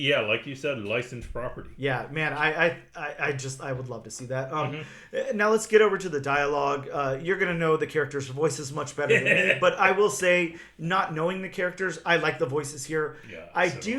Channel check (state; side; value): identical; both; correlation 1.00